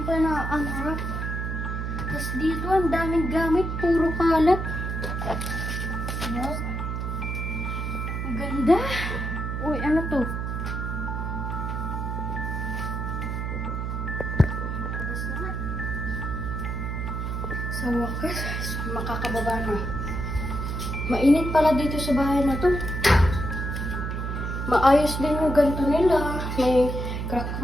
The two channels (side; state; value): right; noise; hum, 3 dB below the sound